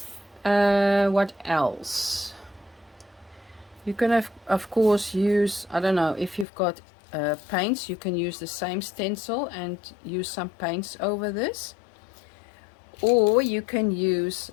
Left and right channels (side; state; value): right; drops out; at 6.5 s